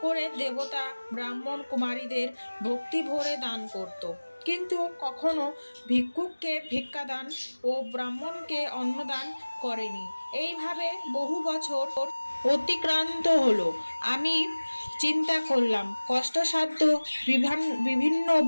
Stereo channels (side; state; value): both; inverted; correlation -1.00